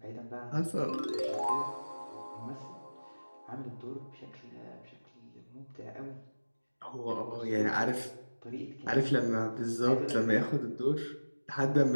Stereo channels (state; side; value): inverted; both; correlation -1.00